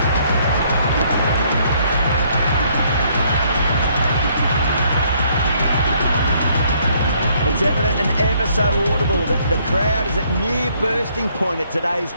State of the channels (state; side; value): inverted; both; correlation -0.67